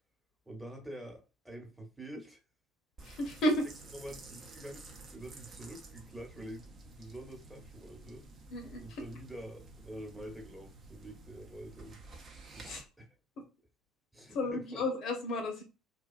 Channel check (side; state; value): both; normal; correlation 0.54